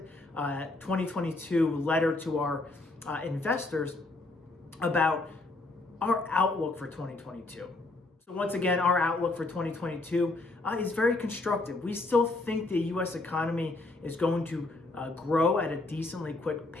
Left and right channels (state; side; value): quieter; right; 3.1 dB